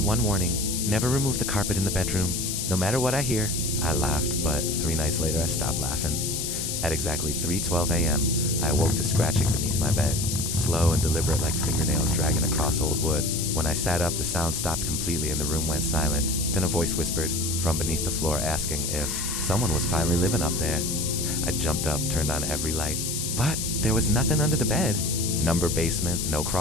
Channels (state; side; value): noise; left; hiss, 2 dB below the sound